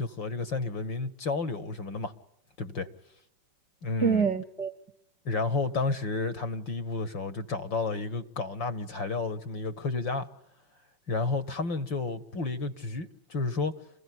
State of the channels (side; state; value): right; late; 5.7 ms